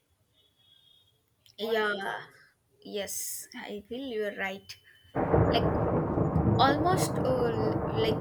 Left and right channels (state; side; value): identical; both; correlation 1.00